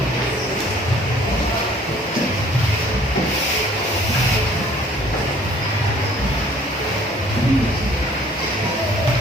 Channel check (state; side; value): normal; both; correlation 0.55